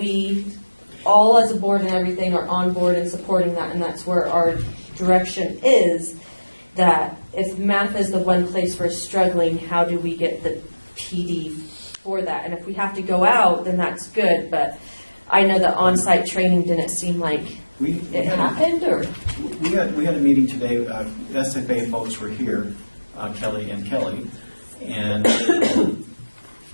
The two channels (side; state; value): both; inverted; correlation -1.00